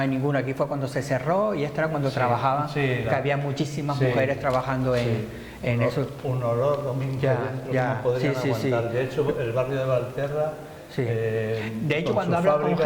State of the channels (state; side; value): identical; both; correlation 1.00